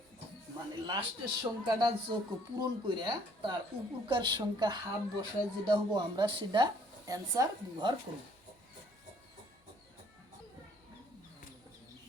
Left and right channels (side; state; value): both; normal; correlation 0.61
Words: মানে লাস্টের সংখ্যাটা যোগ পূরণ করে তার উপকার সংখ্যা হাফ বসায় যেটা হবো আমরা সেটা অ্যান্সার ব্যবহার করব।